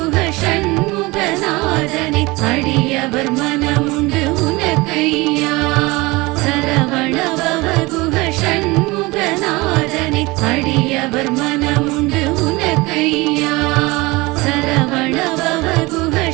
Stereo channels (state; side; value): quieter; left; 22.8 dB